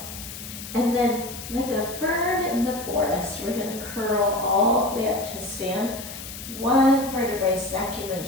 And then, like a fern in the forest, we're gonna curl all the way up to stand. 1 vertebrae stacking at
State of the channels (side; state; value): left; noise; hiss, 11 dB below the sound